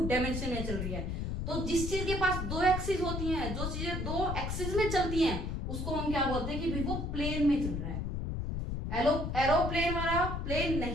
डायमेंशन में चल रही है। तो जिस चीज के पास 2 एक्सिस होती हैं, जो चीजें 2 एक्सिस में चलती हैं, उसको हम क्या बोलते हैं कि भाई वो प्लेन में चल रहा है। एरोप्लेन वाला प्लेन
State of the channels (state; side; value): noise; left; rumble, 3 dB below the sound